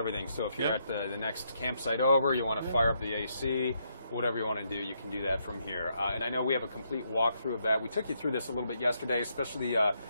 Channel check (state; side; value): inverted; both; correlation -0.76